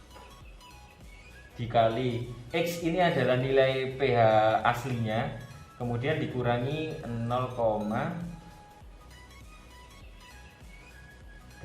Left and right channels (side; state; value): both; identical; correlation 1.00